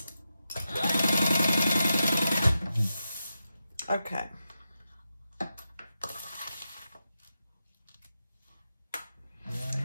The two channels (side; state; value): both; inverted; correlation -0.89